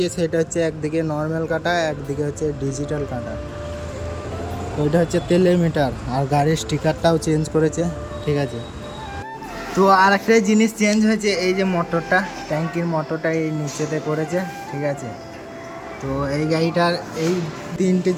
সেটা হচ্ছে একদিকে নর্মাল কাটা, একদিকে হচ্ছে ডিজিটাল কাটা। তো এটা হচ্ছে তেলের মিটার, আর গাড়ির স্টিকারটাও চেঞ্জ করেছে। ঠিক আছে, তো আর একটা জিনিস চেঞ্জ হয়েছে, এই যে মোটরটা, ট্যাঙ্কির মোটরটা এই নিচেতে করেছে। ঠিক আছে, তো এই গাড়িটার এই তিনটে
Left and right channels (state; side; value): identical; both; correlation 1.00